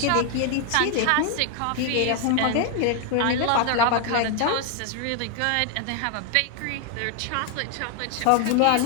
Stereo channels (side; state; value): both; different; correlation 0.00